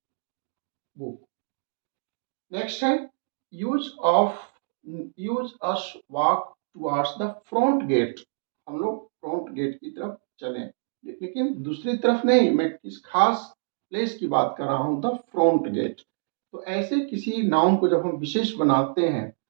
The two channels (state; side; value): silent; left; digital silence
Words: book. Next है use of use us walk towards the front gate. हम लोग फ्रंट गेट की तरफ चलें, लेकिन दूसरी तरफ नहीं, मैं किस खास प्लेस की बात कर रहा हूँ, द फ्रंट गेट। तो ऐसे किसी नाउन को जब हम विशेष बनाते हैं